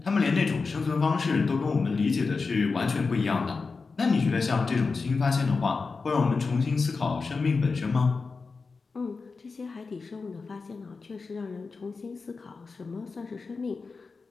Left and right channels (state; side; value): quieter; right; 4.4 dB